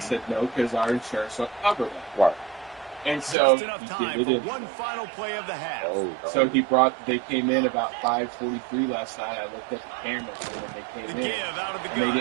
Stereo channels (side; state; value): left; drops out; at 3.4 s